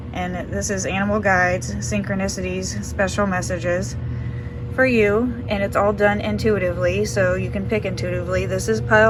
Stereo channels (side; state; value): both; identical; correlation 1.00